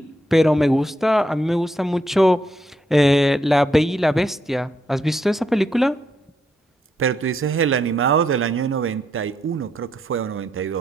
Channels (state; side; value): normal; both; correlation 0.78